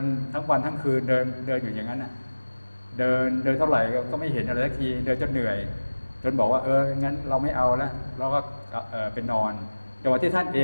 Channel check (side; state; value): both; inverted; correlation -1.00